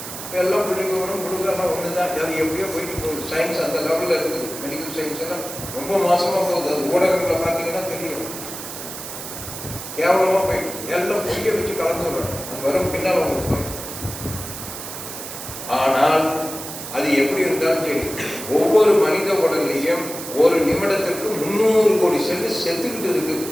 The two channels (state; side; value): noise; right; hiss, 9 dB below the sound